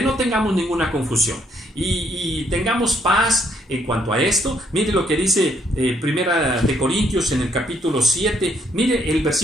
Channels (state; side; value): normal; both; correlation 0.70